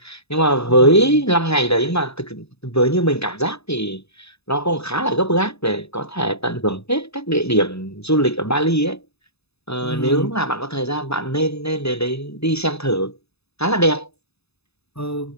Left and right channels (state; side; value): late; right; 0.79 ms